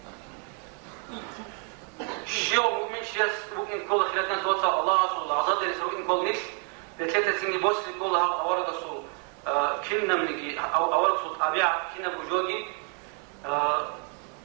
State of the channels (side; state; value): left; quieter; 34.5 dB